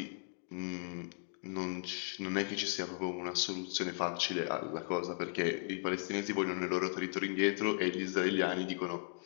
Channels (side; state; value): right; silent; 53 dB below the other